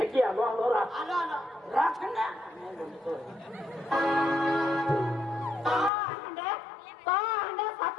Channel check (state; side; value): drops out; right; at 5.9 s